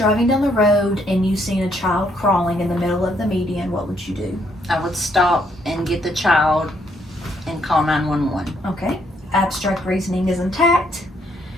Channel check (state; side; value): normal; both; correlation 0.71